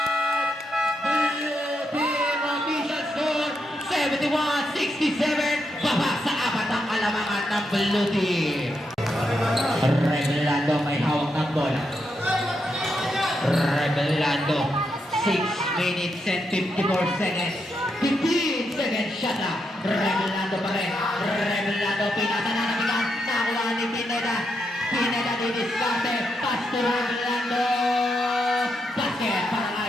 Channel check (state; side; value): normal; both; correlation 0.82